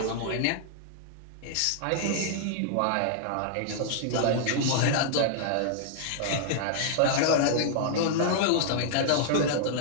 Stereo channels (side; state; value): both; different; correlation -0.01